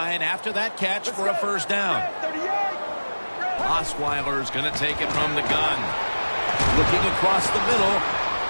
after that catch for a first down. Osweiler's going to take it from the gun. Looking across the middle.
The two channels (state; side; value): inverted; both; correlation -1.00